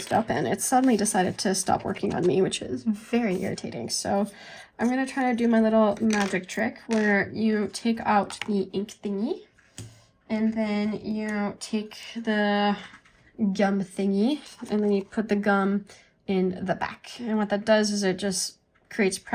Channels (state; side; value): identical; both; correlation 1.00